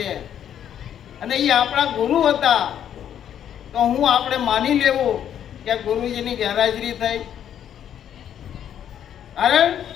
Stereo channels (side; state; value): right; quieter; 9.8 dB